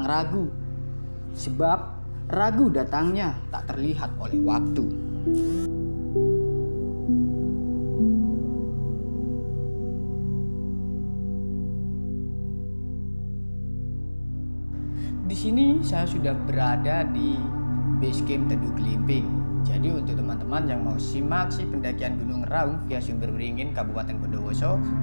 ragu, sebab ragu datangnya tak terlihat oleh waktu. Di sini saya sudah berada di base camp Teduh Glimping. Jadi untuk teman-teman yang mau simak pendakian Gunung Raung via Sumber Beringin Kabupaten Bondowoso,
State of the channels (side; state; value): both; inverted; correlation -1.00